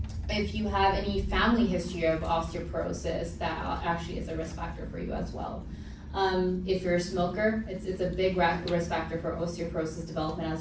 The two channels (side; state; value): both; identical; correlation 1.00